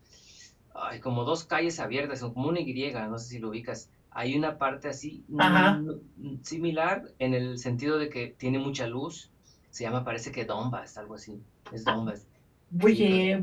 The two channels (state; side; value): identical; both; correlation 1.00